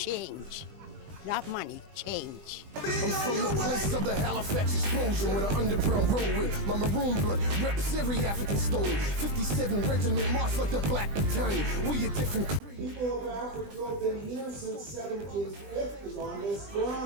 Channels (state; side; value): late; left; 20 ms